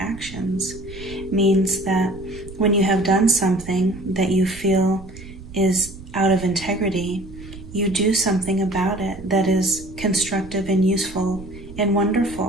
means that when you have done something that you feel is out of integrity, you do something about it that is constructive and useful and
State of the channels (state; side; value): noise; right; rumble, 16 dB below the sound